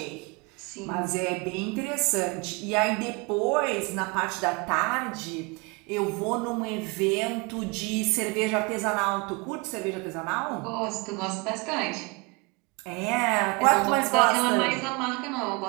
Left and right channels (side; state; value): left; quieter; 28.3 dB